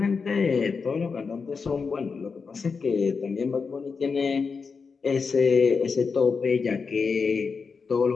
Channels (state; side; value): quieter; right; 5.2 dB